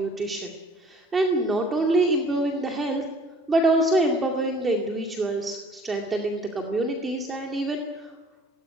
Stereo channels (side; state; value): both; normal; correlation 0.53